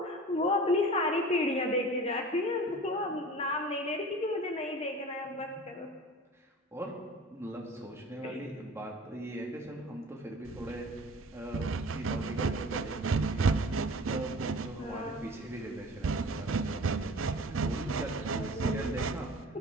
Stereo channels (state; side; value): normal; both; correlation 0.41